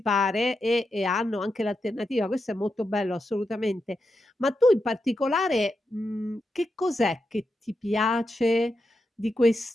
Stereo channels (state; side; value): normal; both; correlation 0.86